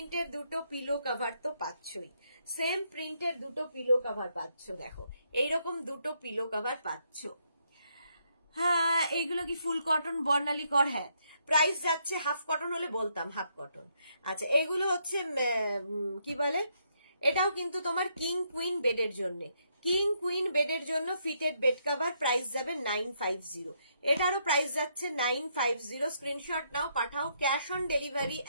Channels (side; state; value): both; inverted; correlation -0.75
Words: দুটো পিলো কভার তো পাচ্ছই, সেম প্রিন্টের দুটো পিলো কভার পাচ্ছ, দেখো এইরকম দুটো পিলো কভার পাচ্ছ। হ্যাঁ, এইগুলো কি ফুল কটন বর্ণালী কর? হ্যাঁ, প্রাইস যাচ্ছে, হাফ কটন হলে বলতাম, হাফ কটন। আচ্ছা, এগুলো হচ্ছে কি বলে, এটাও কিন্তু তোমার কিং কুইন বেডের জন্য, কিং কুইন বেডের জন্য ফিটেড বেড কভার, প্রাইস যাবে 950। এটারও প্রাইস যাচ্ছে 950। স্ক্রিনশট নাও, পাঠাও। Cash on delivery